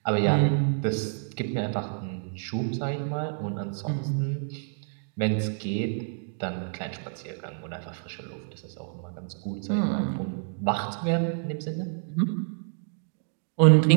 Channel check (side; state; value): left; silent; 57 dB below the other